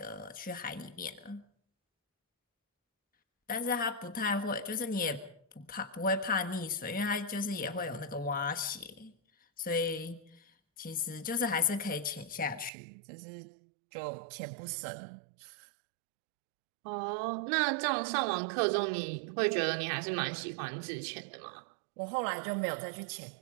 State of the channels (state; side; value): drops out; left; at 12.7 s